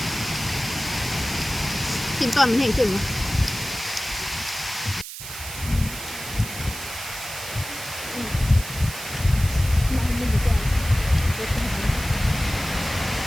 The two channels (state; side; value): noise; right; hiss, 10 dB below the sound